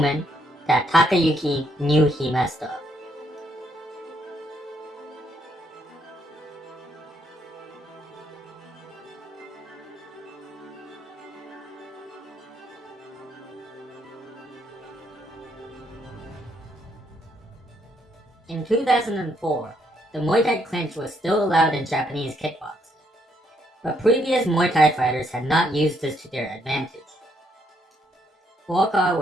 that Takayuki knew he messed up. In 2004, the Muay Thai clinch was still allowed in Japanese kickboxing, but previous Muay Thai fighters had not used this to their advantage. Buakaw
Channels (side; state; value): both; normal; correlation 0.73